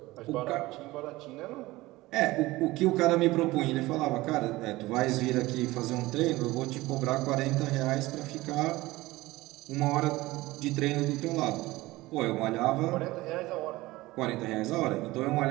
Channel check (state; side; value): quieter; left; 19.2 dB